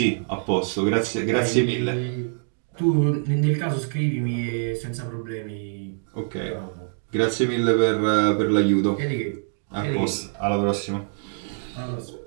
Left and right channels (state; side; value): silent; left; digital silence